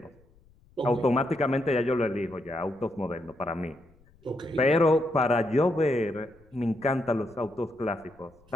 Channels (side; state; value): left; noise; rumble, 30 dB below the sound